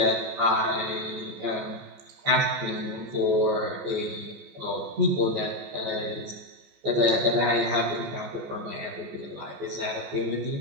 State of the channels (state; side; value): late; left; 14 ms